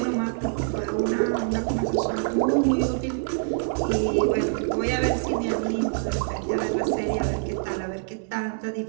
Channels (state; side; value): silent; left; digital silence